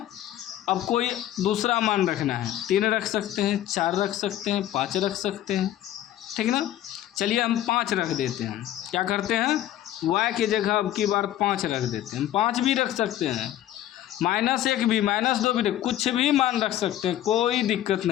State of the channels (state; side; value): quieter; right; 12.7 dB